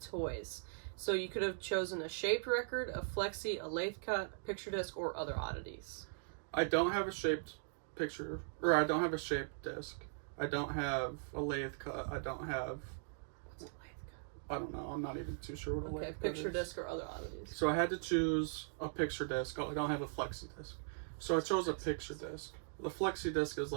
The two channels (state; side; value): silent; left; digital silence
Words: Toys. So you could have chosen a shaped record, a flexi, a lathe cut, picture disc, or other oddities. I don't have a shaped picture, or I don't have a shaped disc. I don't have a lathe cut. I don't have... What's a lathe cut? I don't know. I'm not even too sure what a lathe cut is. Okay, picture disc or other oddities. So I had to choose a picture disc. Oh, I don't have a flexi disc. So I chose a picture disc. The flexi disc is